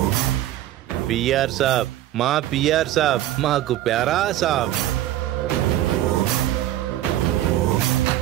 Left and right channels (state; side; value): quieter; left; 13.6 dB